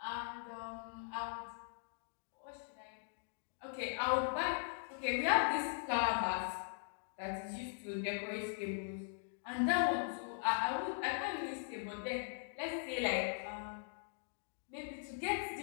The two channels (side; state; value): right; silent; digital silence